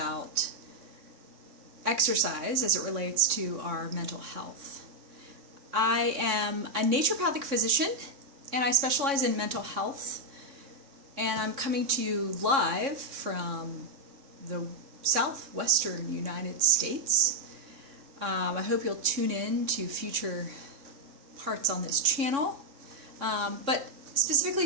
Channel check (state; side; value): late; left; 3.6 ms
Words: exercise as it relates to our mental health. I am a naturopathic physician, and I specialize in mental health, and I'm coming to you live from the southwestern United States. I hope you'll tune in to future parts on this channel, but specifically